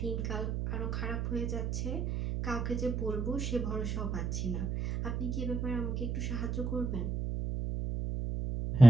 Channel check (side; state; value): right; noise; hum, 2 dB below the sound